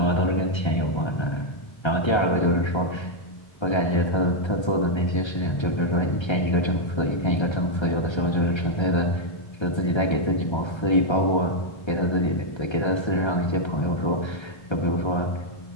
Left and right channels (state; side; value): late; right; 1.3 ms